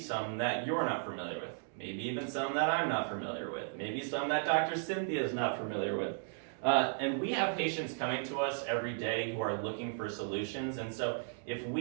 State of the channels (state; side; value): silent; left; digital silence